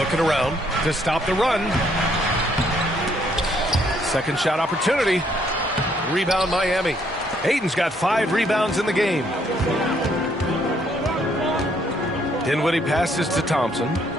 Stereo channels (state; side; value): normal; both; correlation 0.68